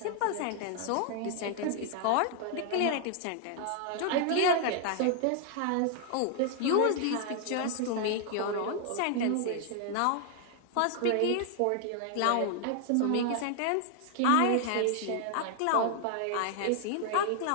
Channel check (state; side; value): different; both; correlation 0.00